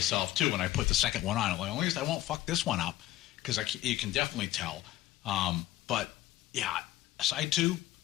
too when I put the second one on. I'm like, at least I won't fuck this one up, because you can definitely tell. But yeah, side 2,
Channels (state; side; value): quieter; right; 14.9 dB